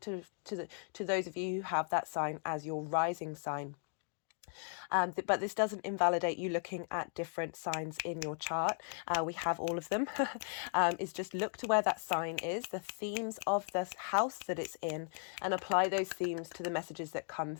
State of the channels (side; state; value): right; silent; 53 dB below the other